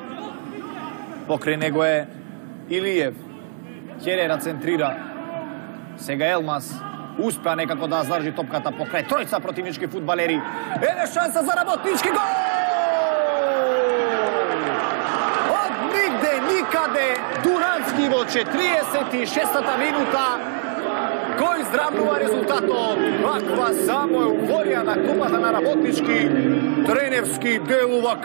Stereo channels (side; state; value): left; silent; digital silence